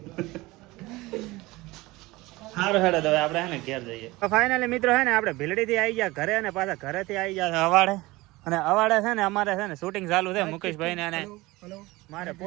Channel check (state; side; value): quieter; left; 20.8 dB